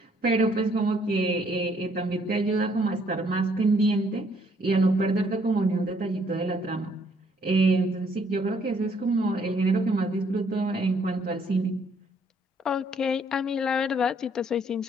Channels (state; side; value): normal; both; correlation 0.66